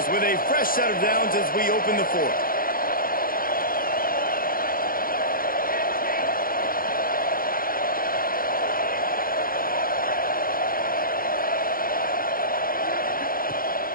with a fresh set of downs as we open the fourth.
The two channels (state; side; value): late; right; 0.42 ms